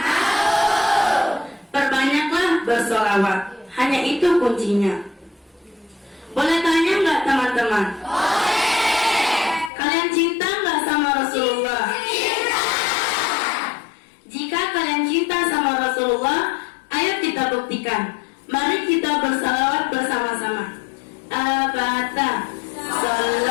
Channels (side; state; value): right; drops out; at 9.7 s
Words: bersolawat. Hanya itu kuncinya. Boleh tanya nggak teman-teman? Boleh. Kalian cinta nggak sama Rasulullah? Cinta. Jika kalian cinta sama Rasulullah, ayo kita buktikan. Mari kita bersalawat bersama-sama. Al-Fatihah.